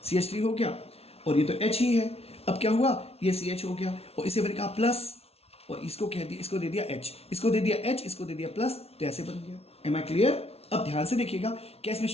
CH3 हो गया, और ये तो H ही है। अब क्या हुआ, ये CH हो गया, और इसे मैंने कहा प्लस, और इसको कह दिया, इसको दे दिया H, इसको दे दिया H, इसको दे दिया प्लस, तो ऐसे बन गया। Am I clear? अब ध्यान से देखिएगा, क्या इसमें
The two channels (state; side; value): late; right; 0.30 ms